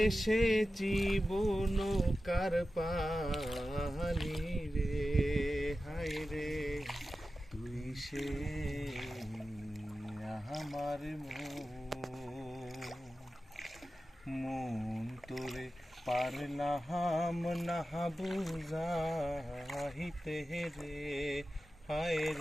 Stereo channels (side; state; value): both; normal; correlation 0.93